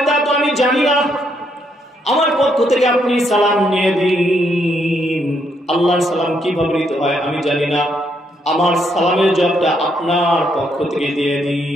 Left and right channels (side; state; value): both; normal; correlation 0.75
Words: তা তো আমি জানি না, আমার পক্ষ থেকে আপনি সালাম নিয়ে দিন। আল্লাহর সালাম কিভাবে নিতে হয় আমি জানি না, আমার সালামের জবাবটা আপনার পক্ষ থেকে দিয়ে